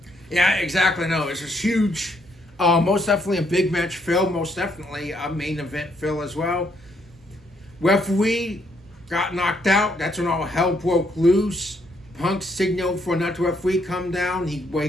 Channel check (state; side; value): normal; both; correlation 0.72